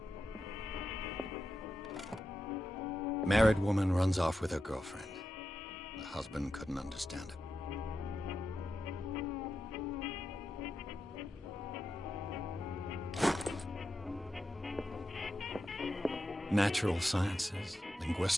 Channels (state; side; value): normal; both; correlation 0.89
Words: Married woman runs off with her girlfriend. The husband couldn't understand it. Natural sciences,